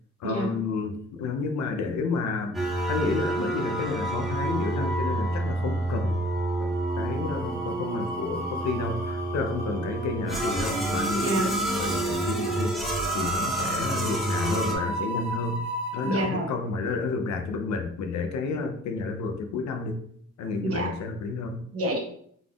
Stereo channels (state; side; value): normal; both; correlation 0.48